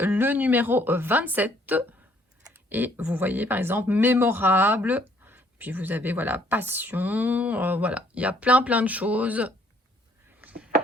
le numéro 27 et vous voyez par exemple mémorable. Puis vous avez voilà passion, voilà, il y a plein de choses.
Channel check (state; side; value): normal; both; correlation 0.64